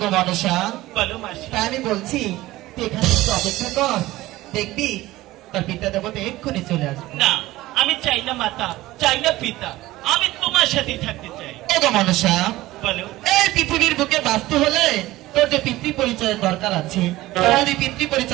মনসা বলো মাসি তাই আমি বলছি তুই এখানে একটু অপেক্ষা কর দেখবি তার পিতা দেবতা এক্ষুনি চলে আসবে না আমি চাই না মাতা চাই না পিতা আমি তোমার সাথে থাকতে চাই ওগো মনসা বলো এই পৃথিবীর বুকে বাঁচতে হলে তোর যে পিতৃ পরিচয়ের দরকার আছে তোর যদি পিতৃ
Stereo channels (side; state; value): left; quieter; 17.4 dB